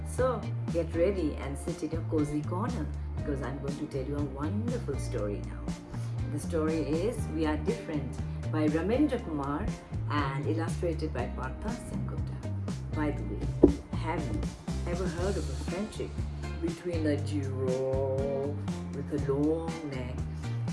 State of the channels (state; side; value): identical; both; correlation 1.00